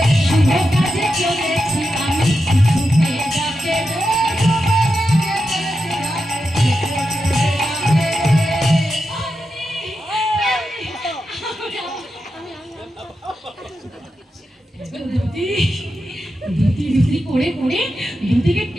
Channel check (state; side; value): normal; both; correlation 0.88